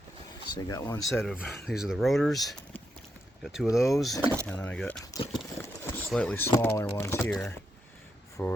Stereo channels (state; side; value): normal; both; correlation 0.82